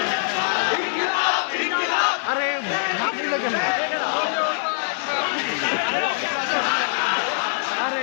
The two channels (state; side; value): silent; right; digital silence